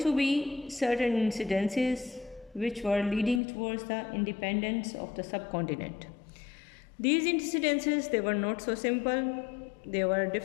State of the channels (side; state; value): right; drops out; at 3.4 s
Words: be certain incidences which were leading towards the independence of the subcontinent. These incidences, they were not so simple. There were